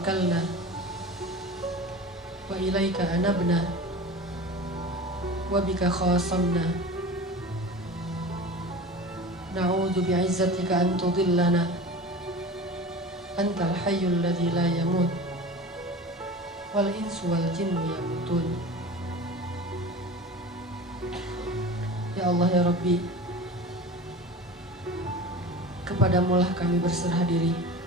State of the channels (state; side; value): normal; both; correlation 0.35